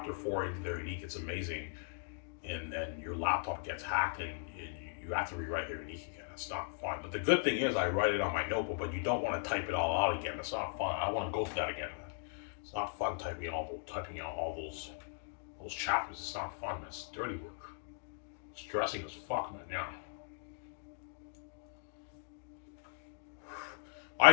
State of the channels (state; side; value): silent; right; digital silence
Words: 4 into their unique. It's amazing, and then your laptop gets hacked and you have to rewrite your unique again. It's not fun. But the good thing is I write it on my notebook, but you don't want to type it all out again. It's not fun. I want to go through that again, man. It's not fun typing out all those chapters. It's not fun. It's dirty work. Stressing as fuck, man. Yeah. I